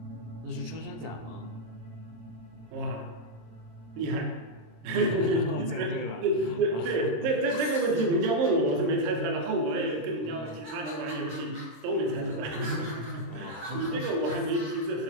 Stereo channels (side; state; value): left; late; 26 ms